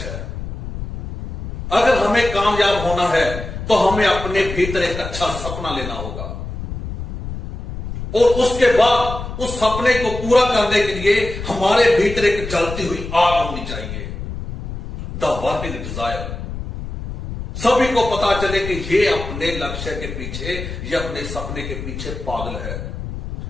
है। अगर हमें कामयाब होना है तो हमें अपने भीतर एक अच्छा सपना लेना होगा। और उसके बाद उस सपने को पूरा करने के लिए हमारे भीतर एक जलती हुई आग होनी चाहिए, द वर्किंग डिजायर। सभी को पता चले कि ये अपने लक्ष्य के पीछे, ये अपने सपने के पीछे पागल है।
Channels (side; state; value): left; noise; rumble, 8 dB below the sound